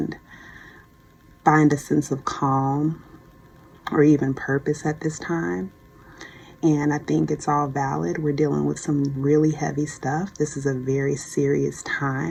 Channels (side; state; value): both; identical; correlation 1.00